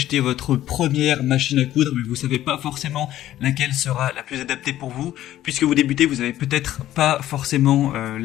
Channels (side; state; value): right; quieter; 13.4 dB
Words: votre première machine à coudre, mais vous savez pas forcément laquelle sera la plus adaptée pour vous. Puisque vous débutez, vous avez peut-être pas forcément